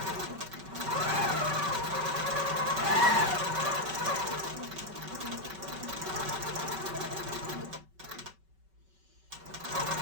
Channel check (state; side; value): late; left; 5.3 ms